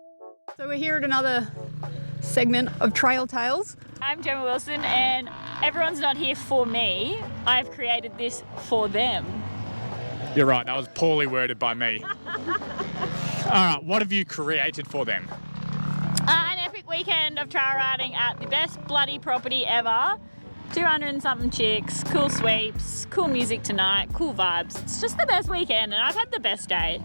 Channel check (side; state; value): both; inverted; correlation -1.00